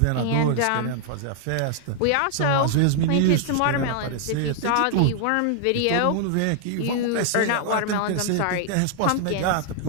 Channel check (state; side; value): different; both; correlation 0.00